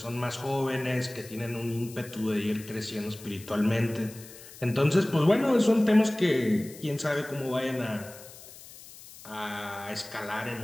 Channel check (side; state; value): left; noise; hiss, 18 dB below the sound